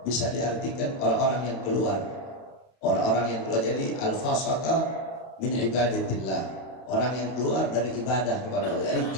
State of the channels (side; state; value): right; late; 31 ms